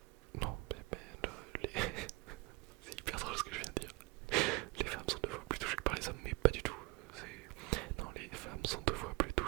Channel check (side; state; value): left; quieter; 24.4 dB